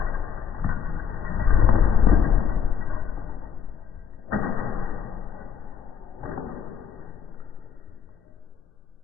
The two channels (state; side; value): quieter; right; 7.5 dB